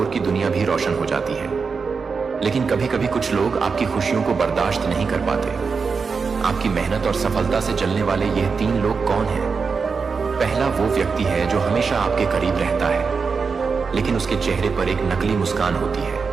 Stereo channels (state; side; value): quieter; left; 5.1 dB